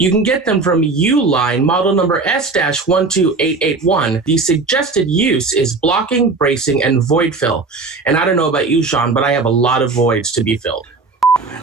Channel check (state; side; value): quieter; left; 3.9 dB